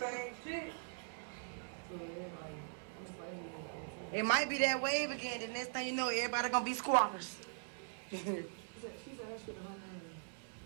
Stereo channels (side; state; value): left; silent; digital silence